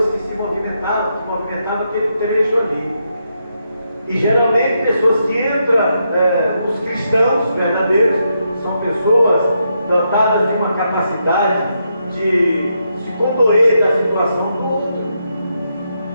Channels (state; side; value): inverted; both; correlation -0.81